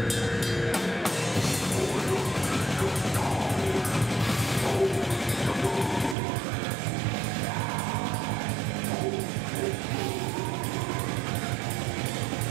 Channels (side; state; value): left; drops out; at 6.2 s